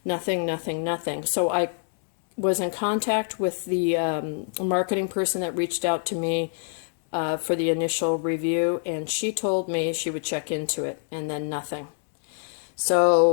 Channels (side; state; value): right; silent; digital silence